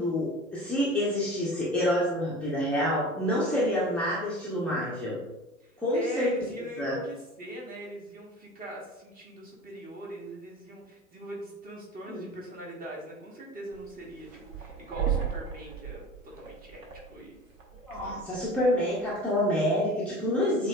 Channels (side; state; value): both; normal; correlation 0.38